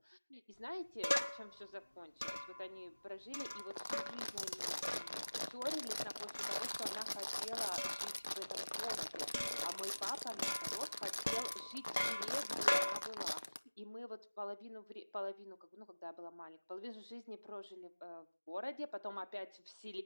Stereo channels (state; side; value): inverted; both; correlation -1.00